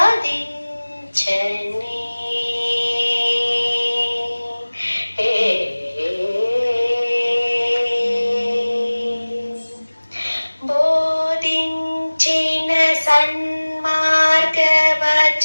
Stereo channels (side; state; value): both; inverted; correlation -1.00